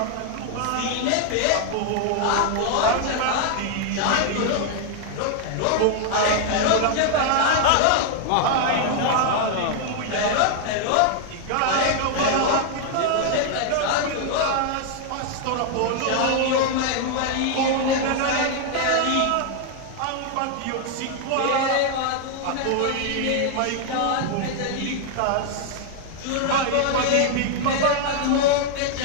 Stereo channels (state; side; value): different; both; correlation 0.00